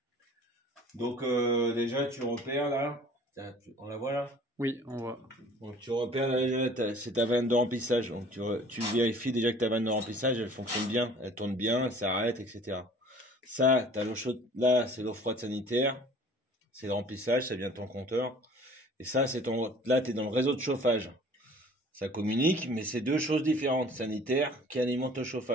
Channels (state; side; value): normal; both; correlation 0.50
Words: Donc, déjà, tu repères là. Tiens, on la voit là? Oui, on voit. Donc, tu repères là, déjà, c'est ta vanne de remplissage. Donc, tu vérifies déjà que ta vanne de remplissage, elle fonctionne bien, elle tourne bien, elle s'arrête, etc. Ça, t'as l'eau chaude. Là, c'est l'eau froide sanitaire. C'est le remplissage, ça vient de ton compteur. Et ça, c'est ton. Là, tu es dans le réseau de chauffage. Ça communique, mais c'est deux choses différentes, sanitaires qui alimentent le